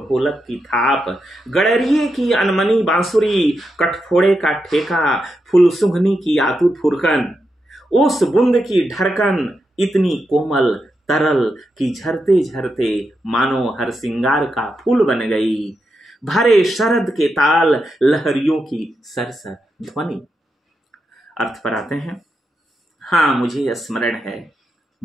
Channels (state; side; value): normal; both; correlation 0.86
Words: ढोलक की थाप, गड़रिये की अनमनी बांसुरी, कठफोड़े का ठेका, फुलसुंघनी की आतुर फुरकन, उस बूंद की ढरकन इतनी कोमल तरल कि झरते झरते मानो हर सिंगार का फूल बन गई, भरे शरद के ताल लहरियों की सरसर ध्वनि। अर्थ पर आते हैं, हाँ मुझे स्मरण है,